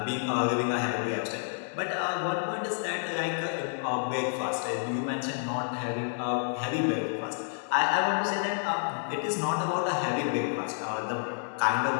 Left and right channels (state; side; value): silent; right; 58 dB below the other